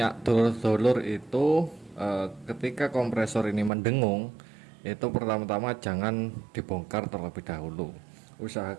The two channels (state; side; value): drops out; left; at 3.7 s